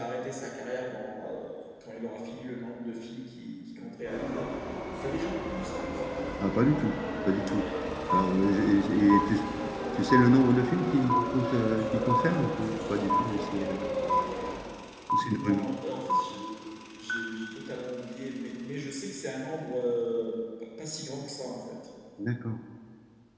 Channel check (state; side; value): identical; both; correlation 1.00